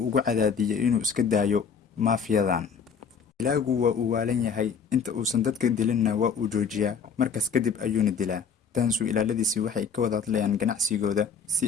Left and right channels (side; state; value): right; quieter; 6.1 dB